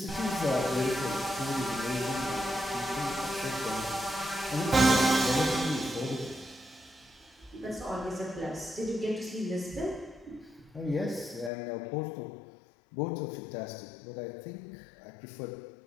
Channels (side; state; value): right; drops out; at 11.5 s